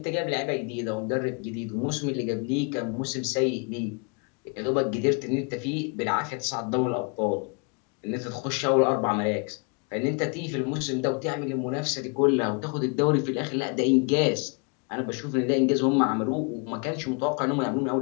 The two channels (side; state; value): right; quieter; 34.9 dB